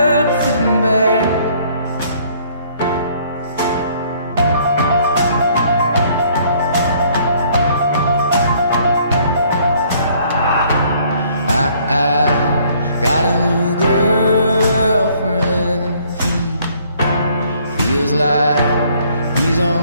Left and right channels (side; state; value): both; inverted; correlation -0.62